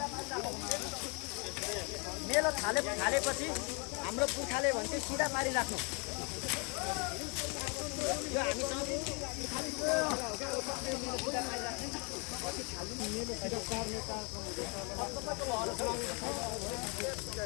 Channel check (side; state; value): right; quieter; 33.4 dB